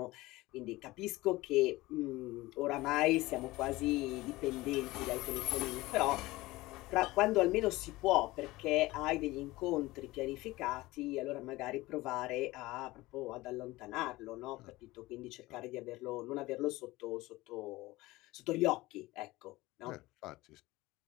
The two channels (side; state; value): right; quieter; 19.5 dB